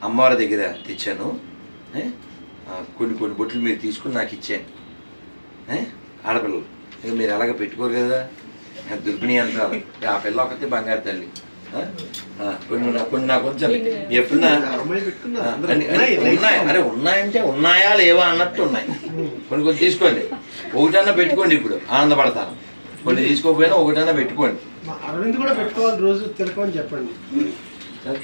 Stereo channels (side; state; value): both; inverted; correlation -1.00